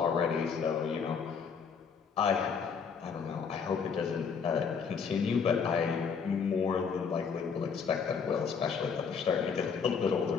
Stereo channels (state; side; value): quieter; right; 6.1 dB